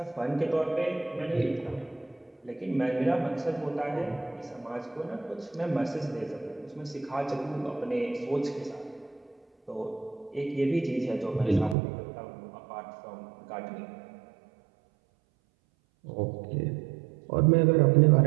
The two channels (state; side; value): drops out; left; at 11.8 s